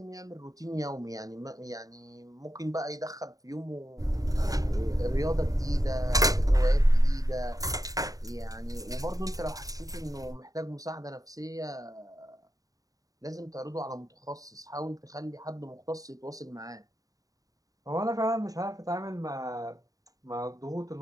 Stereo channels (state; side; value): late; left; 0.17 ms